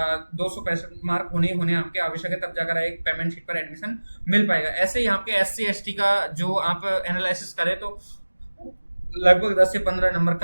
265 मार्क होने आपके आवश्यक है, तब जाकर एक पेमेंट शीट पर एडमिशन मिल पाएगा। ऐसे ही आपके SC ST का जो आप एनालिसिस करें तो लगभग 10 से 15 नंबर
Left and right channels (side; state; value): both; inverted; correlation -1.00